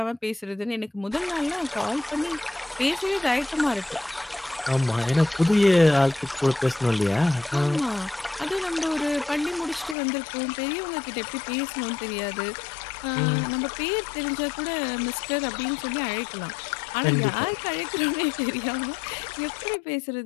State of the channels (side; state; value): right; drops out; at 10.0 s